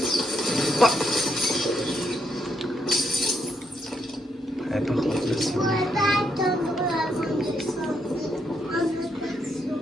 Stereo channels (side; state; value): both; normal; correlation 0.77